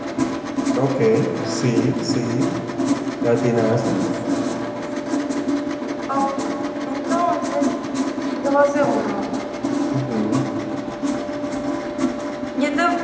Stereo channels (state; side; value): identical; both; correlation 1.00